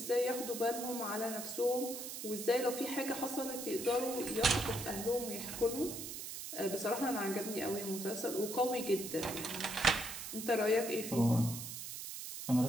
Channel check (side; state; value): right; noise; hiss, 7 dB below the sound